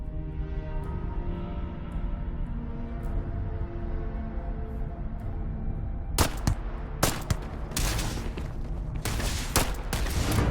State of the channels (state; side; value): identical; both; correlation 1.00